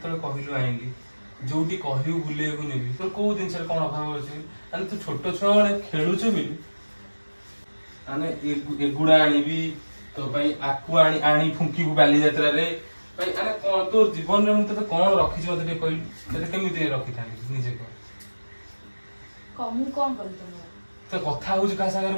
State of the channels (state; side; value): inverted; both; correlation -1.00